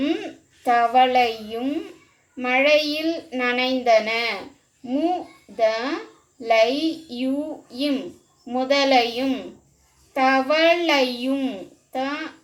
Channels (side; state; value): both; identical; correlation 1.00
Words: தவளையும் மழையில் நனைந்தன. முதலையும் தவளையும்